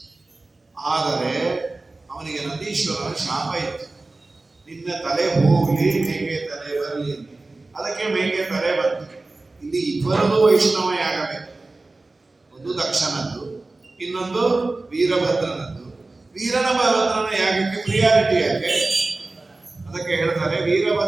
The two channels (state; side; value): quieter; left; 3.2 dB